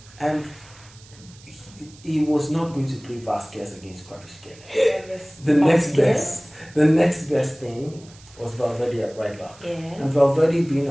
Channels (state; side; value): noise; right; hiss, 24 dB below the sound